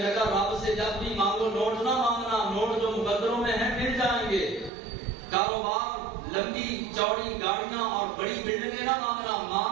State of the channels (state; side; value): drops out; left; at 4.7 s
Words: رب سے جب بھی مانگو نوٹ نہ مانگنا، نوٹ جو مقدروں میں ہیں مل جائیں گے، کاروبار لمبی چوڑی گاڑیاں اور بڑی بلڈنگیں نہ مانگنا،